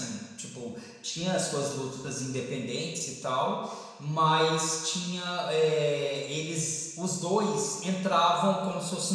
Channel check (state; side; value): identical; both; correlation 1.00